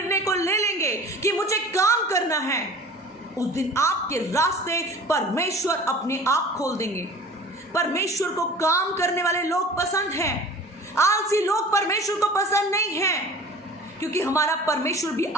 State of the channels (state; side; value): normal; both; correlation 0.42